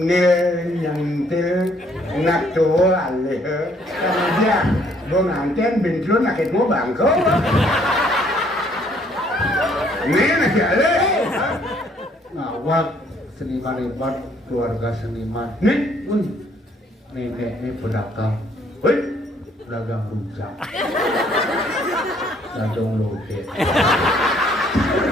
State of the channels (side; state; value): both; normal; correlation 0.64